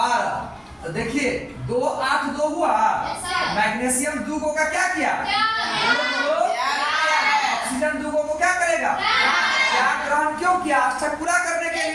तो देखिए 2 8 2 हुआ। मैग्नीशियम 2 को का क्या किया? ऑक्सीजन 2 को क्या करेगा? त्याग ग्रहण क्यों किया? अष्टक पूरा करने के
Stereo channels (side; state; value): both; identical; correlation 1.00